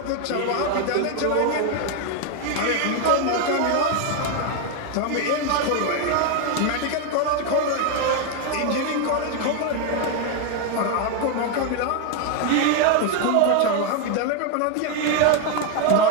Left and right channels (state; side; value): different; both; correlation 0.01